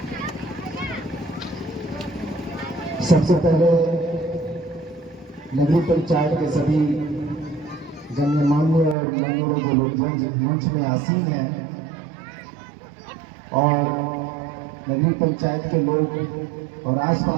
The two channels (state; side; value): drops out; left; at 9.0 s